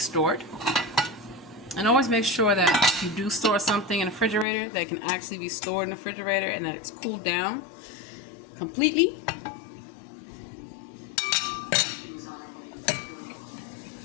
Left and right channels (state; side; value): drops out; right; at 4.5 s